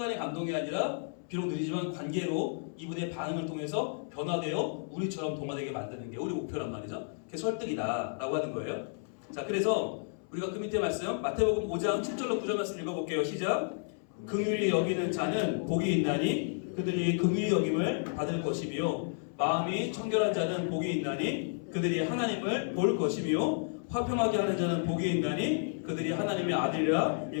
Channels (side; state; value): right; silent; 57 dB below the other